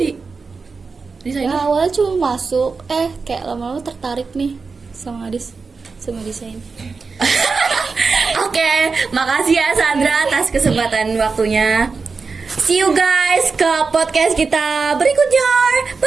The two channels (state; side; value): quieter; left; 4.6 dB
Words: desainer? Ya awalnya cuma masuk, kayak lama-lama tertarik nih sama desain. Oke, makasih ya Sandra atas kesempatan waktunya. See you guys ke podcast kita berikutnya.